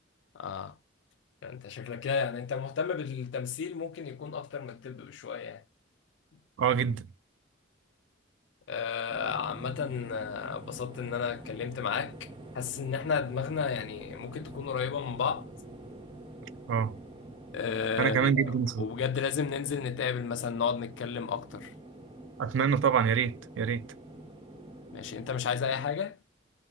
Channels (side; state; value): both; normal; correlation 0.01